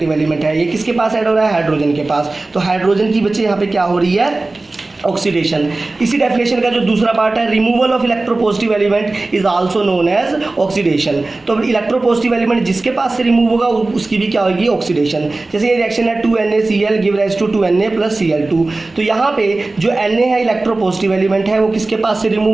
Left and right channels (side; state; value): left; quieter; 3.2 dB